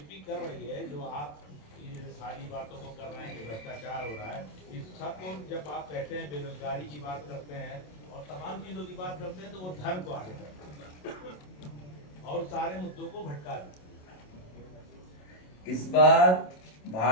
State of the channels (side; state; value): right; late; 27 ms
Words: कर रही है, जो आप ये सारी बातों को कर रहे हैं कि भ्रष्टाचार हो रहा है, इस सबको जब आप कहते हैं बेरोजगारी की बात करते हैं और तमाम चीजों की बात करते हैं तो वो धर्म को आगे करते हैं और सारे मुद्दों को भटका देते हैं। इस बार